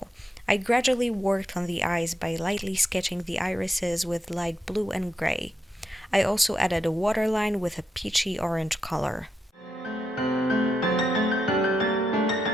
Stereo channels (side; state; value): both; normal; correlation 0.84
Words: I gradually worked on the eyes by lightly sketching the irises with light blue and gray. I also added a waterline with a peachy orange color.